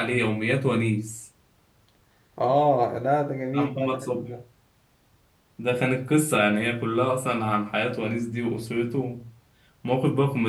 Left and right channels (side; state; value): both; identical; correlation 1.00